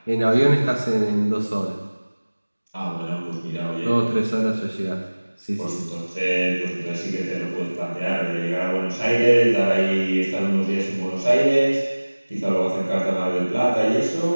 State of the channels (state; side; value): inverted; both; correlation -1.00